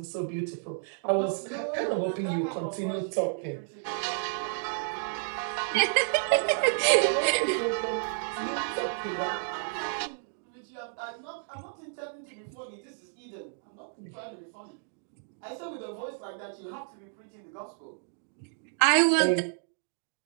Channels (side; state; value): left; silent; 57 dB below the other